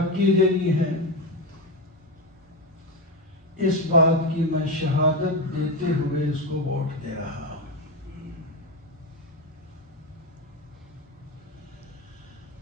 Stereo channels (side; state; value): both; normal; correlation 0.13